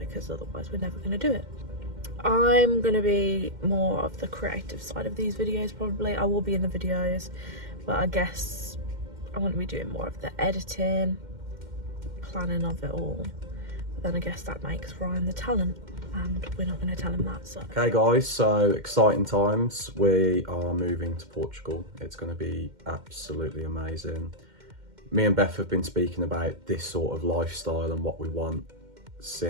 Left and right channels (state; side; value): late; left; 2.1 ms